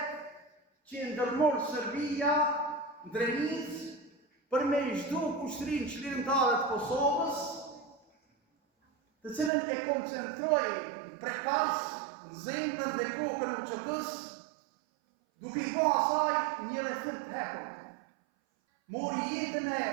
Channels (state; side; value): drops out; left; at 9.5 s